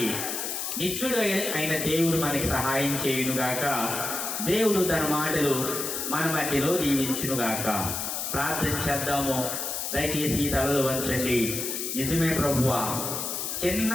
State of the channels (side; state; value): left; noise; hiss, 3 dB below the sound